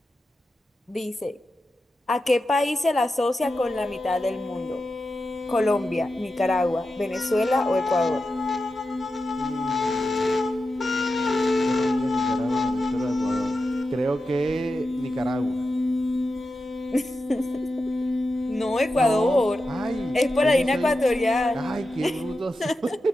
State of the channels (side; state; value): both; normal; correlation 0.91